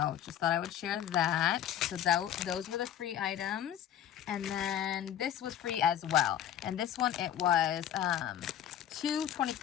just thought I would share that. So those were the free items. And then this was free as well. And this one, it was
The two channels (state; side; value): quieter; right; 10.5 dB